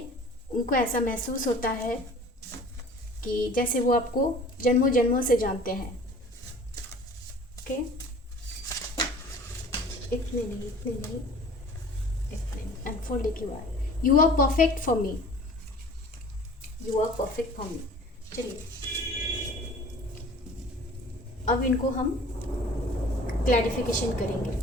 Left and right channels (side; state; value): both; normal; correlation 0.46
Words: उनको ऐसा महसूस होता है कि जैसे वो आपको जन्मों जन्मों से जानते हैं। ओके, इतने नहीं, इतने नहीं, इतने नहीं। अनफोल्ड एक बार। You are perfect for me, you are perfect for me. चलिए अब इनको हम क्लैरिफिकेशन